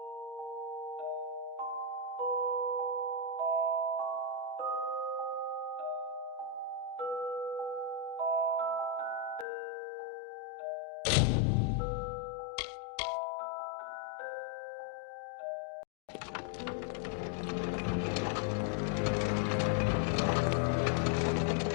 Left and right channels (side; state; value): right; drops out; at 9.5 s